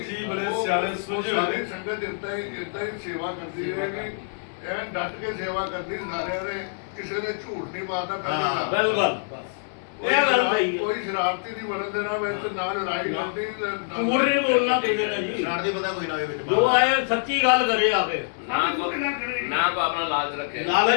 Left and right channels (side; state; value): right; silent; 61 dB below the other